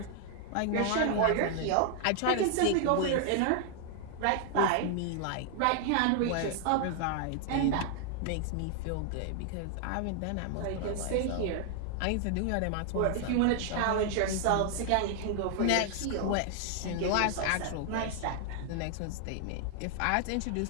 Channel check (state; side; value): different; both; correlation 0.00